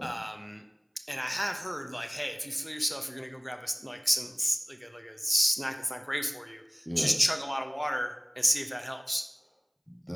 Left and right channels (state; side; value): identical; both; correlation 1.00